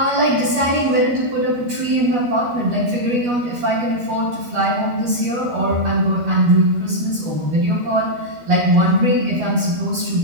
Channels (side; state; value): left; late; 12 ms